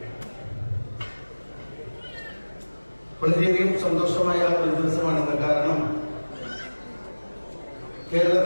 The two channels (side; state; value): both; inverted; correlation -1.00